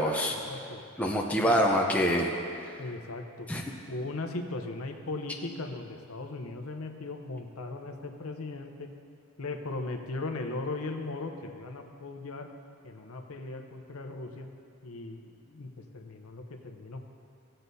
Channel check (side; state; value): both; normal; correlation 0.40